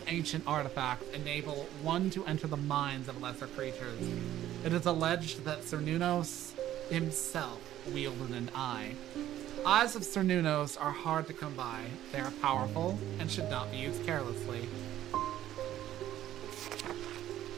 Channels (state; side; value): quieter; left; 12.7 dB